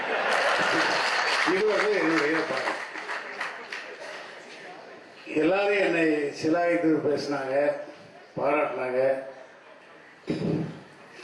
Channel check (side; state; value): both; identical; correlation 1.00